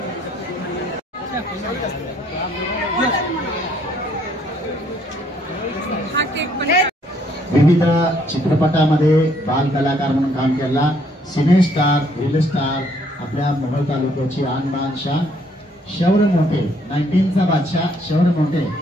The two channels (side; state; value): both; normal; correlation 0.66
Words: विविध चित्रपटामध्ये बाल कलाकार म्हणून काम केला सिने स्टार रील स्टार आपल्या मोहोळ तालुक्याची आन बान शान शौर्य मोठे 19चा बादशाह शौर्य मोठे